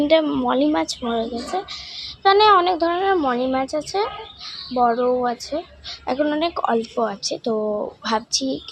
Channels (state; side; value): identical; both; correlation 1.00